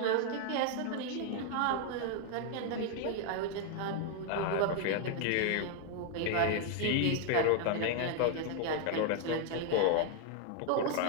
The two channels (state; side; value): different; both; correlation 0.00